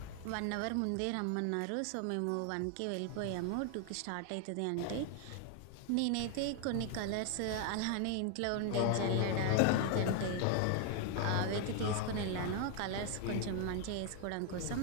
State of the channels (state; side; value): different; both; correlation 0.00